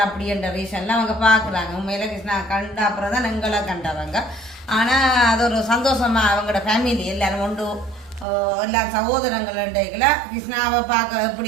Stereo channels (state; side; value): drops out; left; at 8.2 s